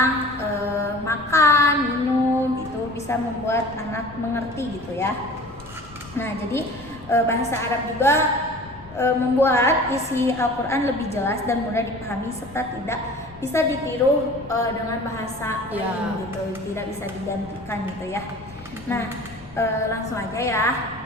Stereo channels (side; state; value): left; noise; rumble, 23 dB below the sound